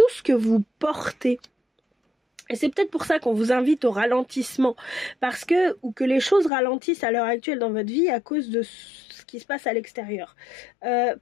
ce que vous portez. Et c'est peut-être pour ça qu'on vous invite au ralentissement, ou que les choses ralentissent à l'heure actuelle dans votre vie à cause de ce qui se passe à l'extérieur. Pas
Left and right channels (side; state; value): right; drops out; at 6.5 s